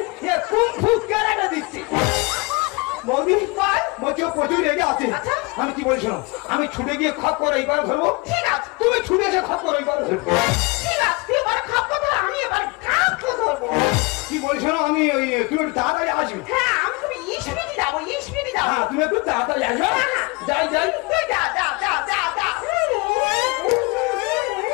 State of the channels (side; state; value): right; quieter; 27.5 dB